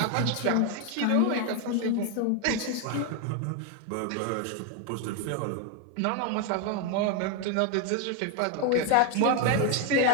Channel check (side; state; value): both; different; correlation 0.01